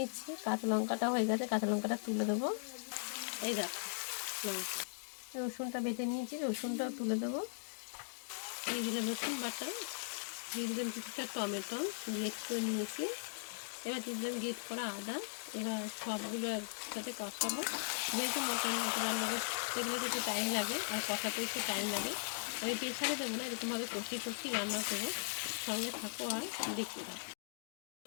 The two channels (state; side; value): silent; right; digital silence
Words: কাঁচা লঙ্কাটা হয়ে গেছে, কাঁচা লঙ্কাটা তুলে দেবো। এই দেখো লঙ্কা, রসুনটা বেটে নিয়েছি, রসুনটাও তুলে দেবো। দিয়ে দিলাম রসুন বাটা, দিয়ে দিলাম কিছুটা টমেটো গ্রেট করে নিয়েছি, এবার দিয়ে দিলাম গ্রেট করা আদা। এবার সবগুলো একসাথে কষাবো, যেহেতু মটন রান্না করতে গেলে তো একটু টাইম লাগে আর কষাতে একটু টাইম লাগে। আমি প্রেশারে দেবো না, এরকমভাবে কষিয়ে রান্না করবো। সঙ্গে থাকো আর দেখতে থাকো।